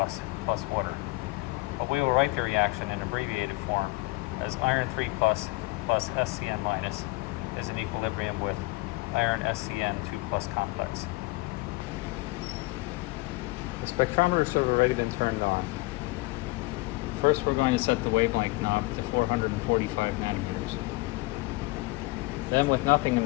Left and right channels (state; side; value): quieter; right; 23.4 dB